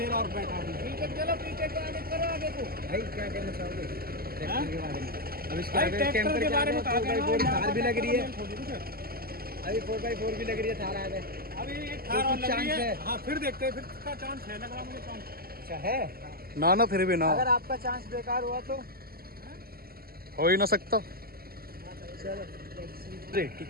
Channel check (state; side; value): late; left; 0.44 ms